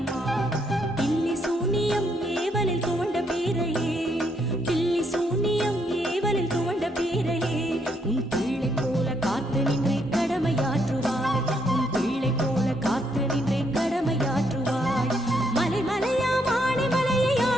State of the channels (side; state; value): both; normal; correlation 0.74